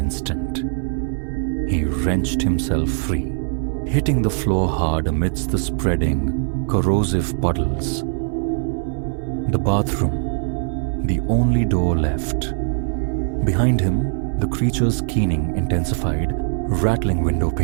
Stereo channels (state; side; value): silent; left; 65 dB below the other